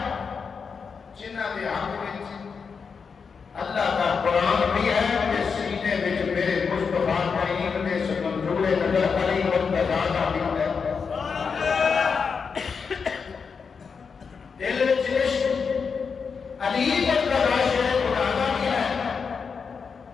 जिन्होंने हक में अल्लाह का कुरान भी है कि सीने में मेरे मुस्तफा करीम ने मंजूर नजर अली मुर्तजा का भी है। दिल में इश्क अली मुर्तजा शेर खुदा का भी है,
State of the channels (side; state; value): right; quieter; 5.7 dB